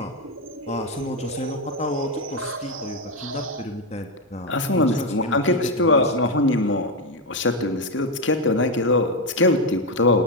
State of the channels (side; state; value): both; normal; correlation 0.07